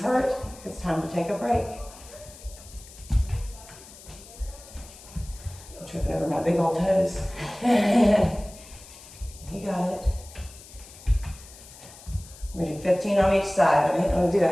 hurt, it's time to take a break. I'm tripping over my big old toes. You got it. We're gonna do 15 on each side. I didn't want to do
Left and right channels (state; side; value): noise; left; hiss, 19 dB below the sound